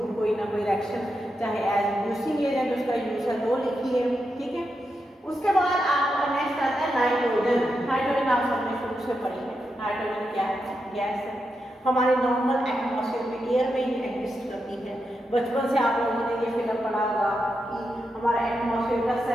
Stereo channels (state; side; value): normal; both; correlation 0.86